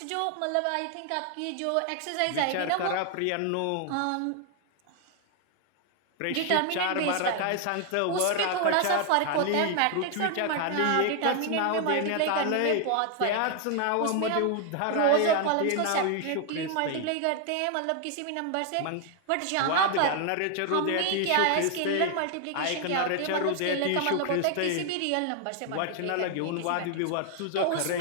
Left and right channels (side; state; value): both; different; correlation 0.00